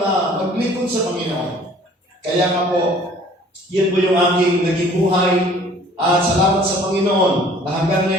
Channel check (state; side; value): normal; both; correlation 0.53